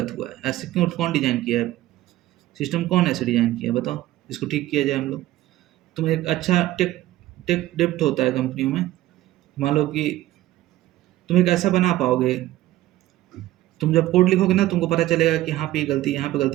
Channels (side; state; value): left; quieter; 15.5 dB